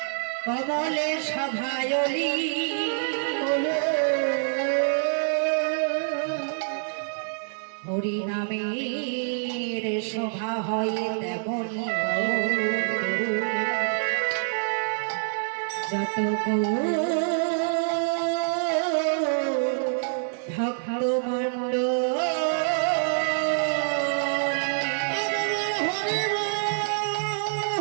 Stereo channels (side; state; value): left; silent; 61 dB below the other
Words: কমলে সভায়লি হরি নামের শোভা হয় তেমনি যত ভক্তমণ্ডল